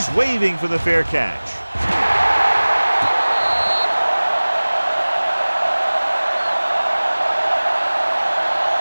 waving for the fair catch.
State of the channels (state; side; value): inverted; both; correlation -1.00